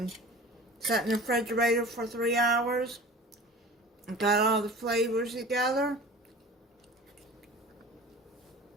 set in the refrigerator for 3 hours. Got all the flavors together.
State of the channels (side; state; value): both; normal; correlation 0.39